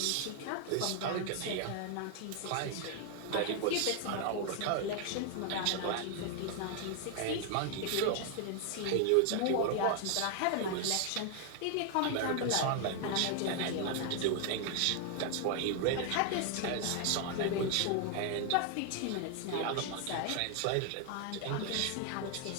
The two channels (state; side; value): different; both; correlation 0.00